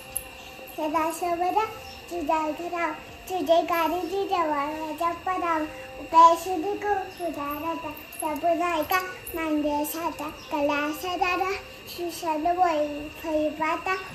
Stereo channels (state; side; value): identical; both; correlation 1.00